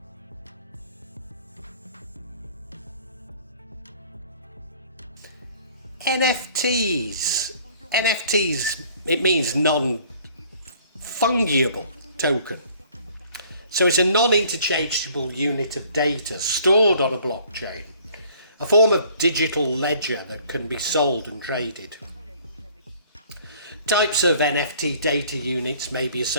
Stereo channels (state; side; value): inverted; both; correlation -0.56